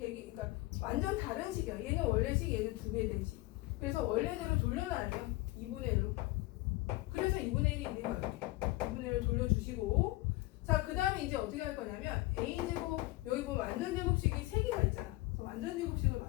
완전 다른 식이야. 얘는 원래 식, 얘는 2배 된 식. 그래서 원래대로 돌려놔야 돼요. 2분의 1로. 그래서 2분의 1이 있는 거예요. 2분의 1을 돌려주시고, 자, 그 다음에 이제 어떻게 할 거냐면 a제곱, 여기 보면 완전 제곱식이 3개가 있잖아. 그래서 완전 제곱식을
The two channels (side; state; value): right; quieter; 20.2 dB